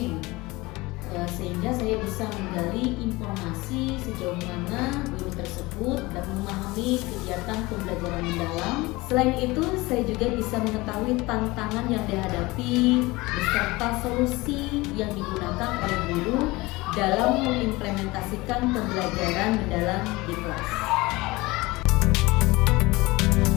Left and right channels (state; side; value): quieter; right; 21.8 dB